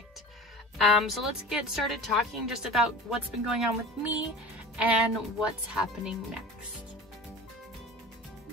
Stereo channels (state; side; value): normal; both; correlation 0.36